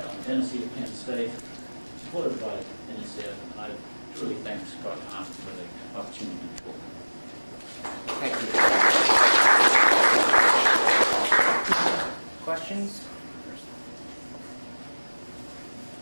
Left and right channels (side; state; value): both; inverted; correlation -1.00